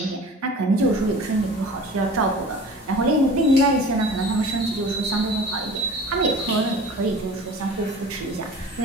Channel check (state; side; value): normal; both; correlation 0.41